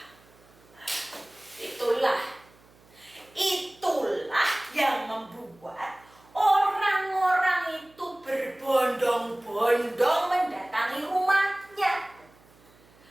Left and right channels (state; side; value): noise; right; hum, 29 dB below the sound